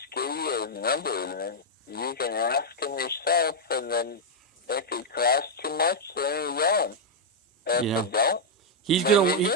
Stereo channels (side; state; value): both; normal; correlation -0.05